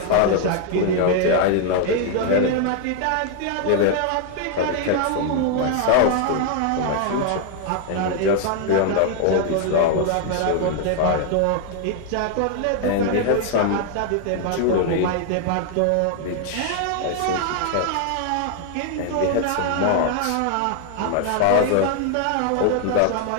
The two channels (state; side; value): different; both; correlation 0.00